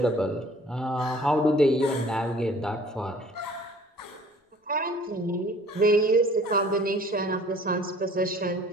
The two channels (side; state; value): both; normal; correlation 0.52